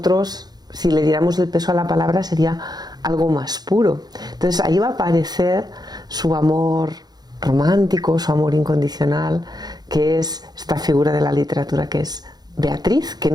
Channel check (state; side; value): late; left; 0.19 ms